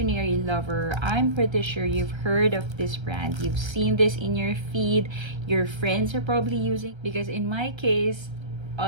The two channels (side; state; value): left; late; 1.3 ms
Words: lover, I'm pretty sure you've heard of this brand. You've seen this in your feed. Your friends are probably using, because in my case,